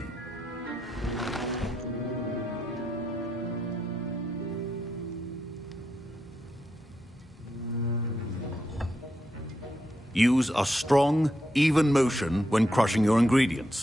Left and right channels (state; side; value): normal; both; correlation 0.82